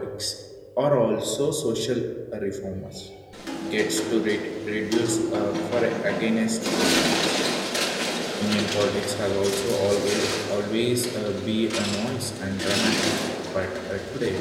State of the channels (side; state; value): both; identical; correlation 1.00